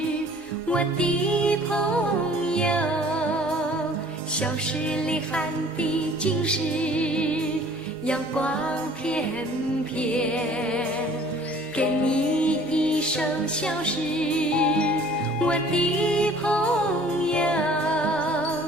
我的朋友。小诗里含的尽是阳光片片。给你一首小诗，我的朋友。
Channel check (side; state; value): both; normal; correlation 0.51